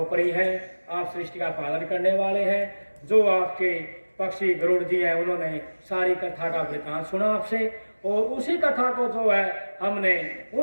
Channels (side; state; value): both; inverted; correlation -1.00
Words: हैं, आप सृष्टि का पालन करने वाले हैं। जो आपके पक्षी गरुड़ जी हैं उन्होंने सारी कथा का वृतांत सुना आपसे, और उसी कथा को जो है हमने